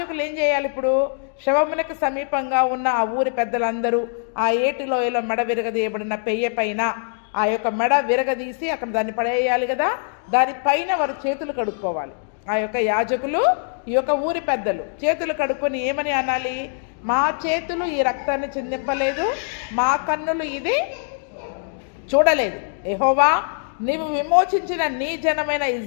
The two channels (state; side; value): silent; right; digital silence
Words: ఏం చేయాలి? ఇప్పుడు శవమునకు సమీపంగా ఉన్న ఆ ఊరి పెద్దలందరూ ఆ ఏటి లోయలో మెడ విరగదీయబడిన పెయ్య పైన ఆ యొక్క మెడ విరగదీసి అక్కడ దాన్ని పడేయాలి కదా. దానిపైన వారు చేతులు కడుక్కోవాలి. ఆ యొక్క యాజకులు, ఈ యొక్క ఊరి పెద్దలు చేతులు కడుక్కొని ఏమని అనాలి? మా చేతులు ఈ రక్తాన్ని చిందింపలేదు, మా కన్నులు ఇది చూడలేదు. యెహోవా, నీవు విమోచించిన నీ జనమైన